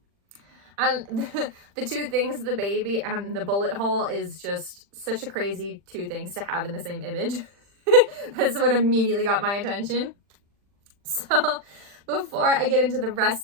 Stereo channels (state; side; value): late; left; 40 ms